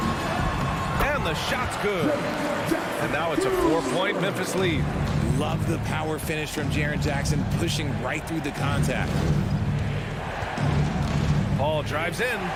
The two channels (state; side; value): identical; both; correlation 1.00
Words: And the shot's good. And now it's a 4-point Memphis lead. Love the power finish from Jaren Jackson, pushing right through the contact. Paul drives in.